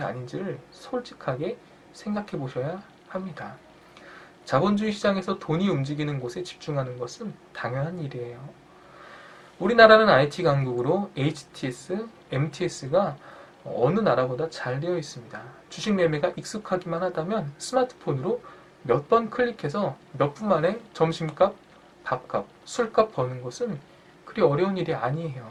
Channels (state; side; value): identical; both; correlation 1.00